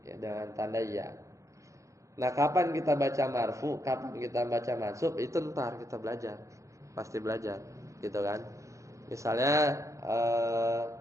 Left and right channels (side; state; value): left; late; 0.15 ms